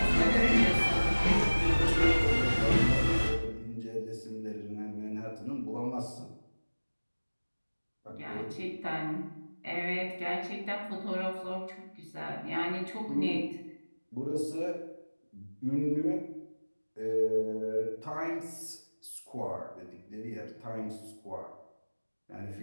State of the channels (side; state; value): both; inverted; correlation -1.00